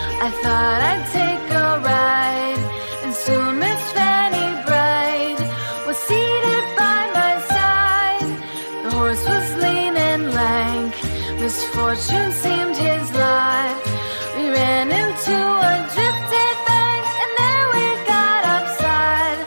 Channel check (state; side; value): inverted; both; correlation -1.00